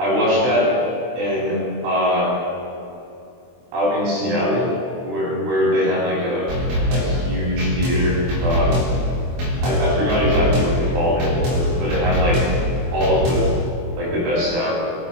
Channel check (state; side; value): late; left; 23 ms